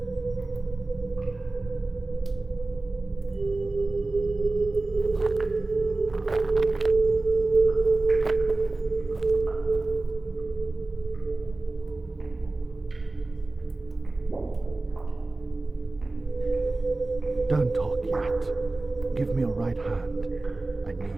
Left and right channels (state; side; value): quieter; left; 3.1 dB